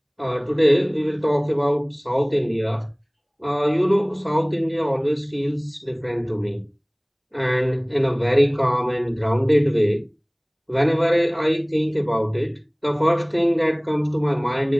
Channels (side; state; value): both; identical; correlation 1.00